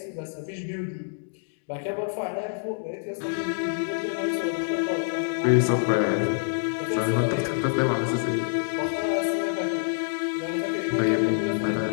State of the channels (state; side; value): silent; right; digital silence